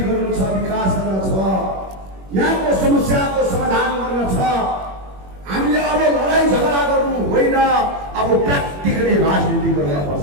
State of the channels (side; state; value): left; late; 21 ms